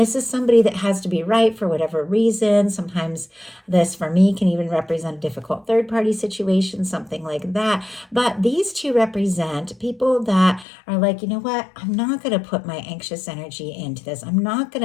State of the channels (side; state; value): right; drops out; at 10.7 s